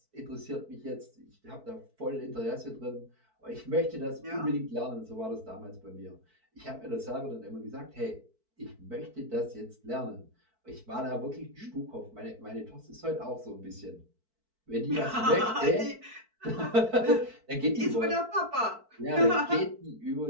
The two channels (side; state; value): left; late; 4.5 ms